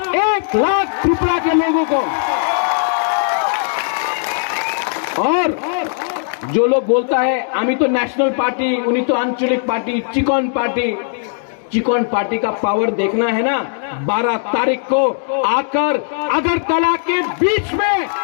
1 लाख त्रिपुरा के लोगों को। और जो लोग बोलता है आमी तो नेशनल पार्टी, उन्हीं तो आंचलिक party, chicken party, chicken party का पावर देखना है ना, 12 तारीख को आकर अगरतला के बीच में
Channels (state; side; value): silent; right; 67 dB below the other